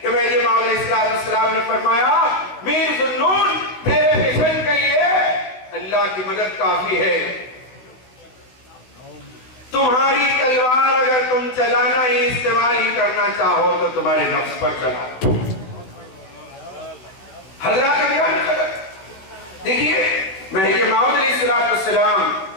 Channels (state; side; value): late; right; 16 ms